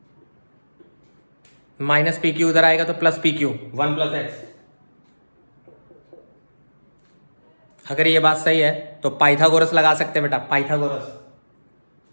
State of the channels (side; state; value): both; inverted; correlation -1.00